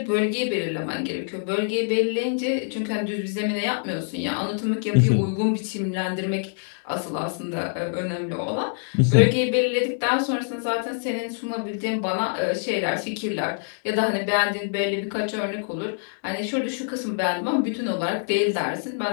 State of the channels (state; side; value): silent; right; digital silence